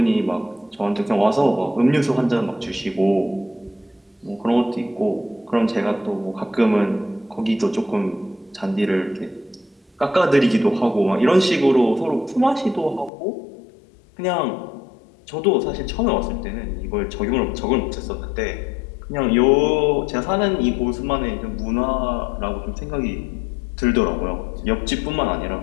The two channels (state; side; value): drops out; right; at 13.1 s